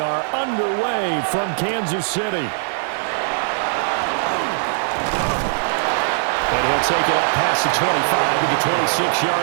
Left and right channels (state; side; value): silent; left; 55 dB below the other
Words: underway from Kansas City. And he'll take it up past the 25 to the